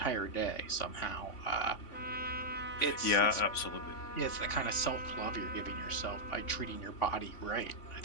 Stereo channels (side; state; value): right; late; 3.5 ms